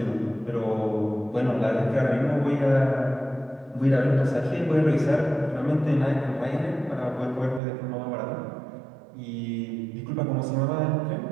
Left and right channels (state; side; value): drops out; left; at 7.6 s